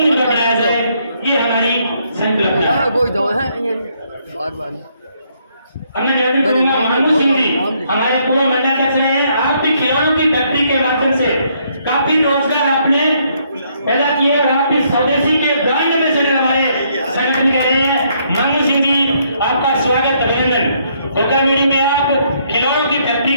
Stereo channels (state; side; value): inverted; both; correlation -0.71